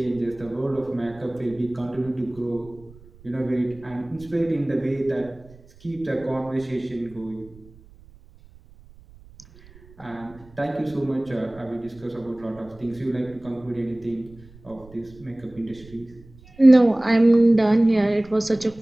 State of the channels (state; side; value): noise; right; rumble, 23 dB below the sound